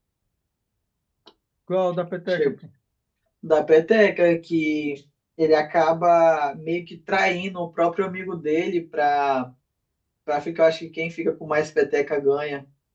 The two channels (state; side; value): identical; both; correlation 1.00